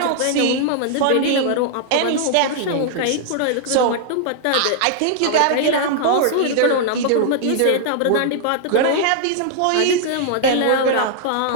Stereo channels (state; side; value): different; both; correlation -0.01